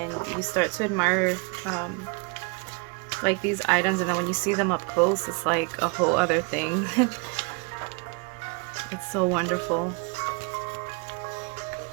you start to admire like these items, and then when you see them up close, it's like a whole other thing. It's so wonderful.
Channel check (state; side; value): quieter; left; 32.2 dB